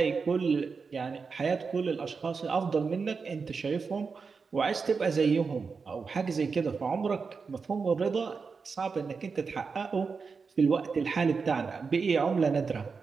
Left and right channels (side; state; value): left; quieter; 5.1 dB